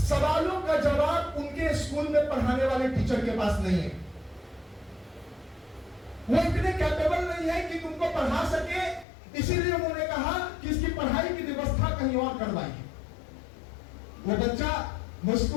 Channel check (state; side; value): drops out; right; at 9.1 s